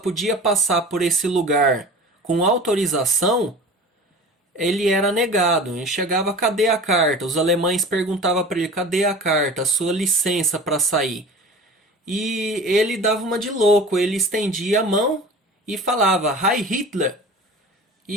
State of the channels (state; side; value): normal; both; correlation 0.38